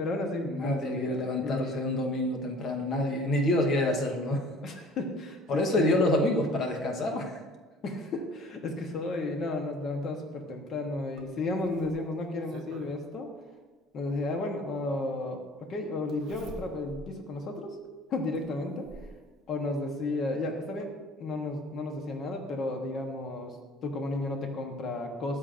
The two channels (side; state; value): both; normal; correlation 0.50